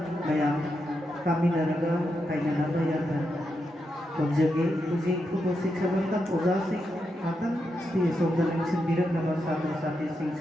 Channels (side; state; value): both; normal; correlation 0.85